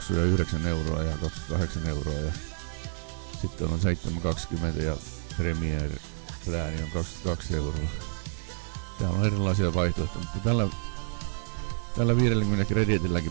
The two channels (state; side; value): silent; left; 56 dB below the other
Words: 9 € ja 28 € ja sitten on 7,20 ja Premier Plani on 22 €. Täällä on erilaisia vaihtoehtoja, mutta tällä 50